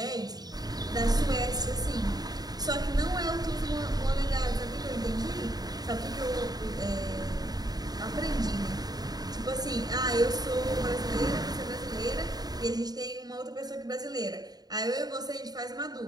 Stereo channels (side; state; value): left; late; 0.19 ms